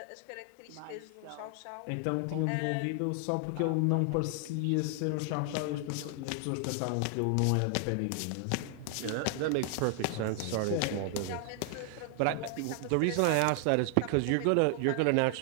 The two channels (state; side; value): different; both; correlation 0.00